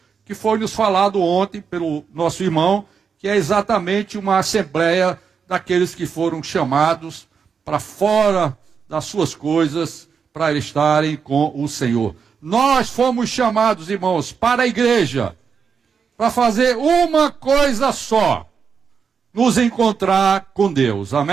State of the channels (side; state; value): left; quieter; 6.2 dB